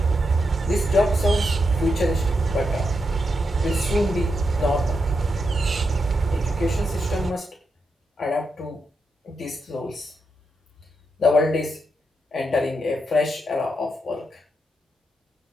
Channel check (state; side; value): normal; both; correlation 0.84